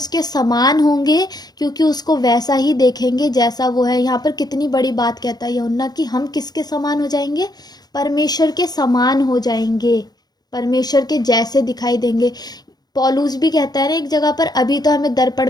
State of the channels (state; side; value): late; right; 0.19 ms